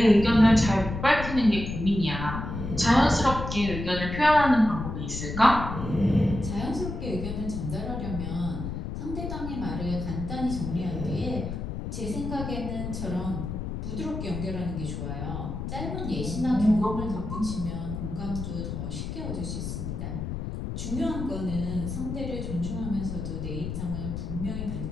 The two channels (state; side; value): noise; left; rumble, 5 dB below the sound